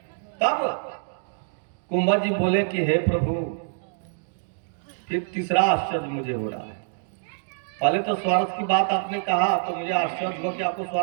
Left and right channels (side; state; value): left; silent; digital silence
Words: तब कुंभज जी बोले कि हे प्रभु, फिर तीसरा आश्चर्य मुझे हो रहा है। पहले तो स्वार्थ की बात आपने कहा तो मुझे आश्चर्य हुआ कि आपको